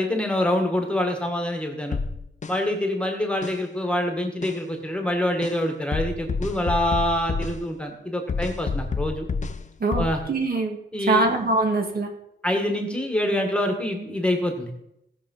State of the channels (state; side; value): normal; both; correlation 0.65